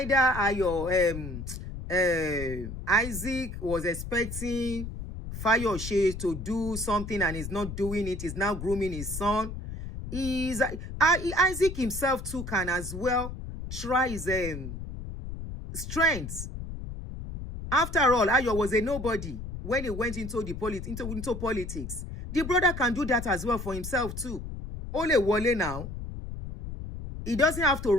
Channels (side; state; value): left; noise; rumble, 8 dB below the sound